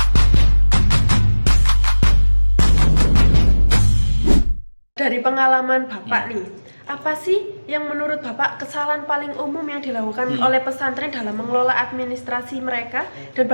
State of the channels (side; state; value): both; inverted; correlation -1.00